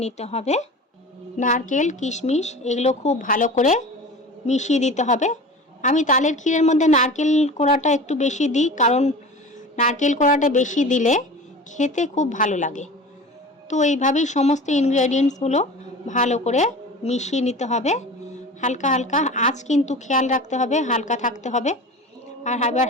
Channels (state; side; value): normal; both; correlation 0.36